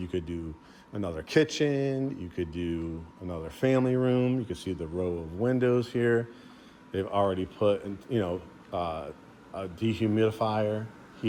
could do another kitchen. You could do another family room. You can see the row of windows here. They've already put, a dehumidifier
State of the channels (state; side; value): identical; both; correlation 1.00